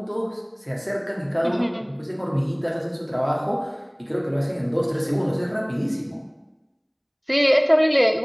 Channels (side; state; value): both; identical; correlation 1.00